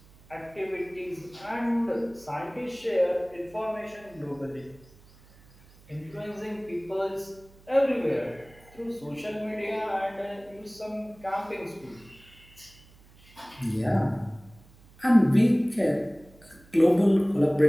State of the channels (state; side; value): noise; right; hum, 26 dB below the sound